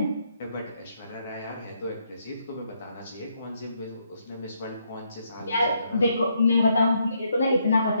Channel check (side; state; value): both; inverted; correlation -0.76